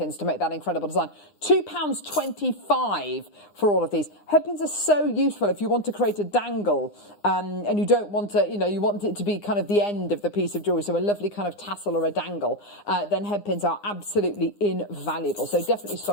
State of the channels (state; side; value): late; right; 9.8 ms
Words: to make that incredible design. £2.25 for all of these. Head pins are so useful if you want to create a dangle and you don't want to, you want it to be kind of the end of the piece of jewellery, so a lovely kind of tassel or a dangle, then head pins are absolutely invaluable. So definitely